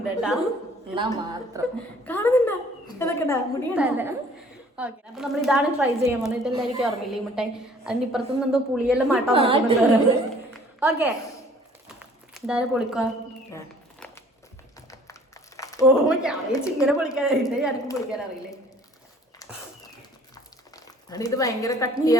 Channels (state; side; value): normal; both; correlation 0.54